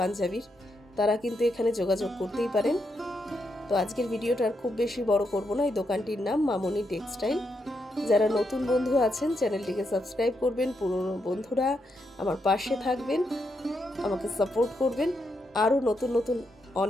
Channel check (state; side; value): normal; both; correlation 0.81